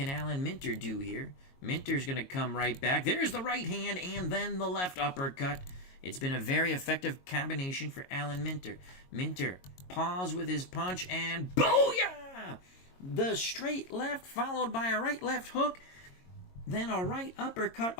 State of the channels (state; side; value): late; right; 22 ms